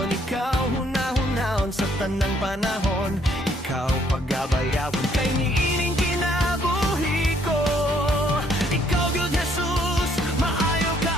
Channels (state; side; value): normal; both; correlation 0.66